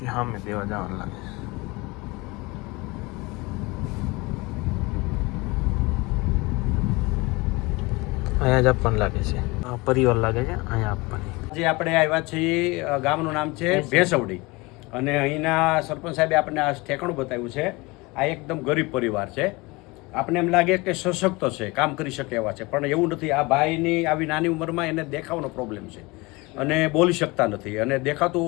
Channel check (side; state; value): right; quieter; 24.2 dB